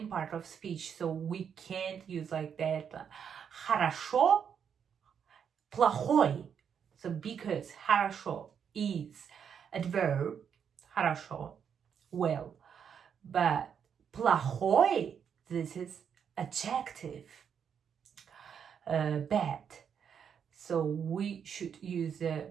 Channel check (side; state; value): left; quieter; 7.6 dB